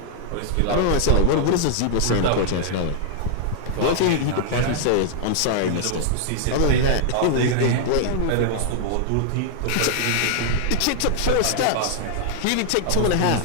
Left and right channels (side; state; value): both; different; correlation 0.00